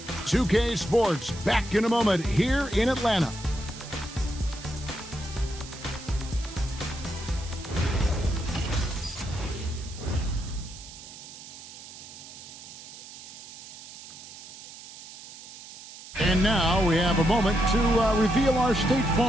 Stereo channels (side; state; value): right; noise; hiss, 15 dB below the sound